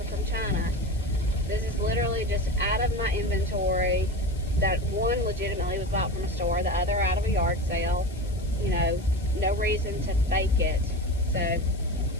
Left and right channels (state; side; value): noise; left; hiss, 23 dB below the sound